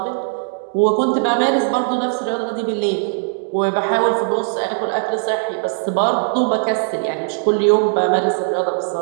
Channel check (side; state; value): left; silent; digital silence